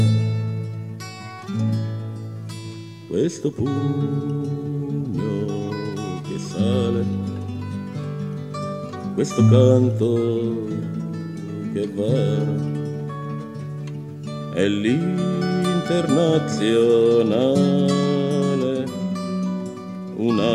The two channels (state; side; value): identical; both; correlation 1.00